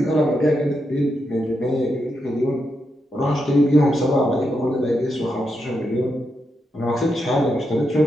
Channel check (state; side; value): normal; both; correlation 0.84